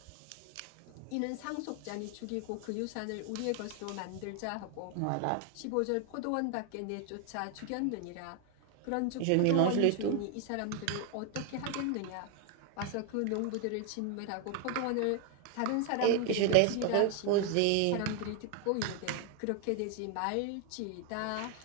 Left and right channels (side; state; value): both; different; correlation 0.01